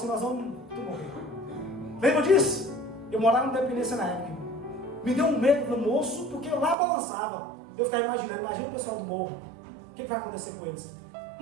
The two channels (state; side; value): drops out; left; at 6.8 s